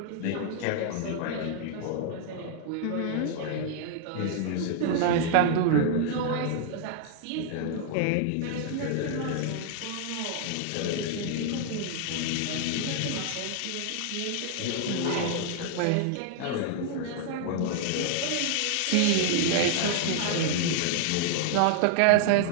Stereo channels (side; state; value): both; different; correlation 0.00